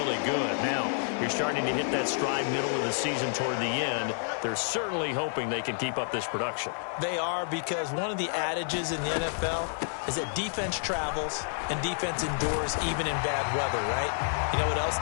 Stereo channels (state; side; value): silent; right; digital silence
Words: good. Now, you're starting to hit that stride middle of the season toward the end. They're certainly hoping they can keep up this production. They are, because one of the adages in the NFL is that defense travels and defense endures even in bad weather, right? You know what else